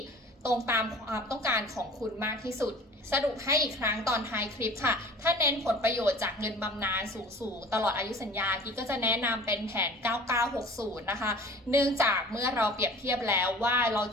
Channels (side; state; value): both; normal; correlation 0.44